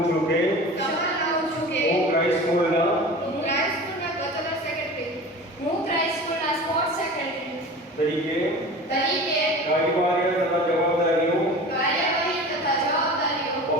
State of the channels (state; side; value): normal; both; correlation 0.36